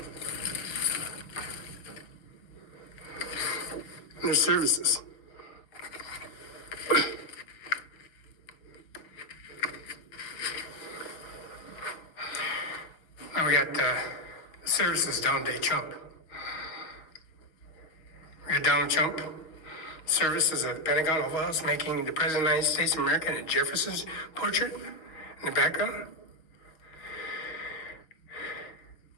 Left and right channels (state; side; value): late; right; 6.3 ms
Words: their services. Now we got services Donald J. Trump. We got Donald Trump services at the Pentagon Oval House making the President of the United States of America and Jefferson's portrait in the background.